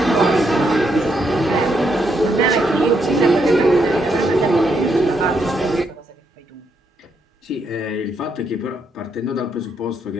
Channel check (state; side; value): normal; both; correlation 0.78